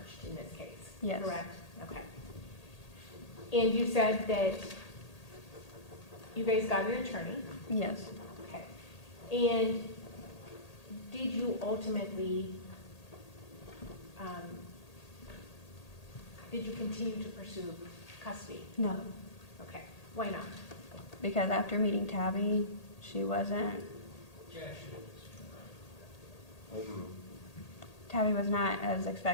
in this case? Yes. Correct? Okay. And you said that you guys got an attorney? Yes. Okay. And did you ultimately, did you continue to pursue custody? No. Okay. Why not? Because after meeting Tabby, she wasn't, Tabby was not as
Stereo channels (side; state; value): right; late; 1.8 ms